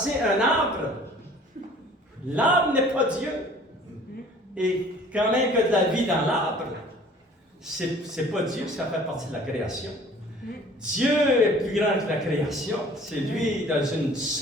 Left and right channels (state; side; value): normal; both; correlation 0.51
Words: un arbre, l'arbre n'est pas Dieu. Et quand même qu'il y a de la vie dans l'arbre, c'est pas Dieu, ça fait partie de la création. Dieu est plus grand que la création. C'est lui, dans une